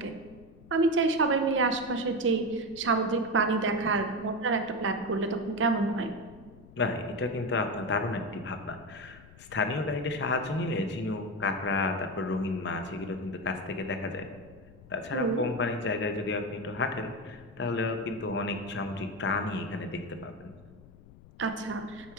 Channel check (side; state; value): left; noise; rumble, 21 dB below the sound